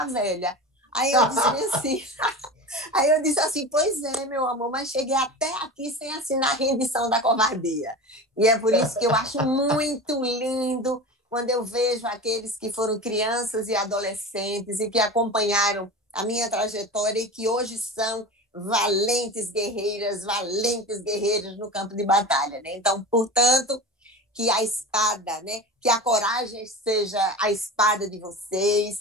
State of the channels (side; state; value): both; normal; correlation 0.30